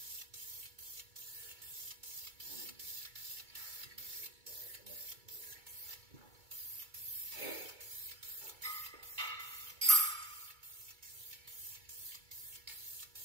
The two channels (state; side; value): late; left; 2.2 ms